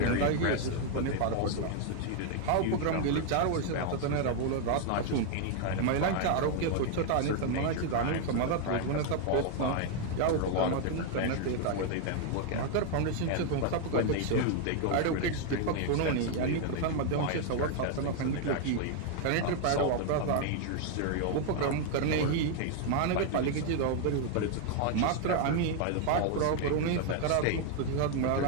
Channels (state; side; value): different; both; correlation 0.00